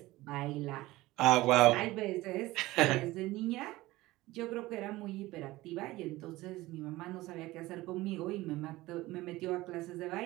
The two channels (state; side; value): quieter; left; 18.6 dB